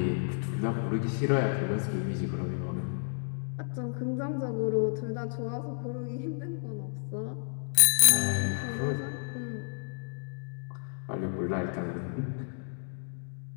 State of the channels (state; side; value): silent; right; digital silence